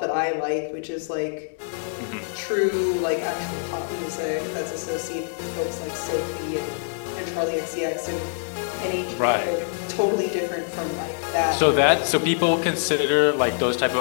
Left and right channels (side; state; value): right; silent; digital silence